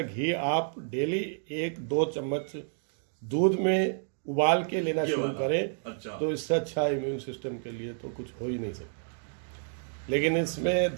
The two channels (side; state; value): left; silent; 58 dB below the other